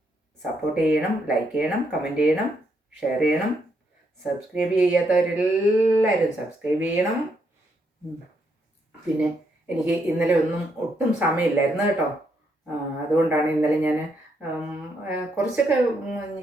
സപ്പോർട്ട് ചെയ്യണം, ലൈക്ക് ചെയ്യണം, കമൻറ്റ് ചെയ്യണം, ഷെയർ ചെയ്യണം. സബ്സ്ക്രൈബ് ചെയ്യാത്തവരെല്ലാവരും സബ്സ്ക്രൈബ് ചെയ്യണം. പിന്നെ എനിക്ക് ഇന്നലെ ഒട്ടും സമയമില്ലായിരുന്നു കേട്ടോ. അതുകൊണ്ടാണ് ഇന്നലെ ഞാൻ കുറച്ചൊക്കെ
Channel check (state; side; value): normal; both; correlation 0.76